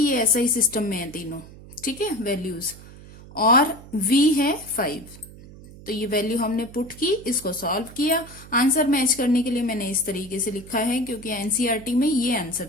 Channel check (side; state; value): right; noise; hum, 18 dB below the sound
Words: ऐसा ही सिस्टम में है तीनों। ठीक है, वैल्यूज, और v है 5। तो ये वैल्यू हमने पुट की, इसको सॉल्व किया। आंसर मैच करने के लिए मैंने इस तरीके से लिखा है क्योंकि एनसीईआरटी में ये आंसर